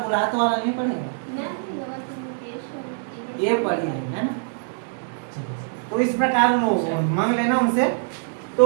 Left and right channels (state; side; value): silent; left; digital silence